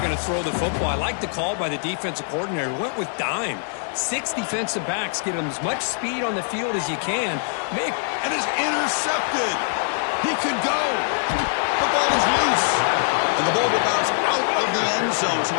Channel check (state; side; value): silent; right; digital silence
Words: going to throw the football. I like the call by the defensive coordinator. Went with dime. 6 defensive backs, get them as much speed on the field as you can. And is intercepted. He could go. The ball is loose. And the ball will bounce out of the end zone, so